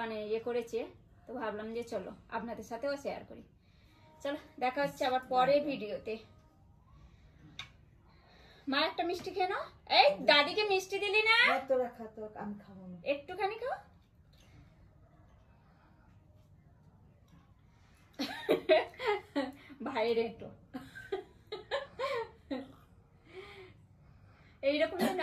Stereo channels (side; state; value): both; identical; correlation 1.00